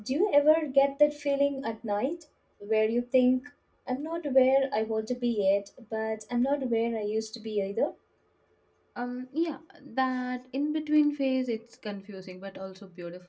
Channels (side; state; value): both; identical; correlation 1.00